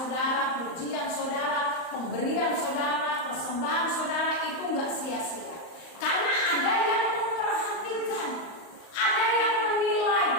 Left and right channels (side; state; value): right; late; 38 ms